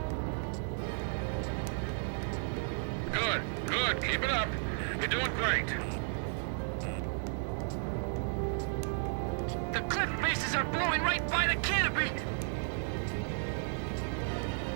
Good. Keep it up. You're doing great. The cliff faces are blowing right by the canopy!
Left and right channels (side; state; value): left; silent; 55 dB below the other